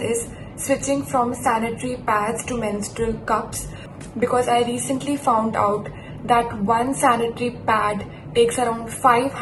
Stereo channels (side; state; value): both; identical; correlation 1.00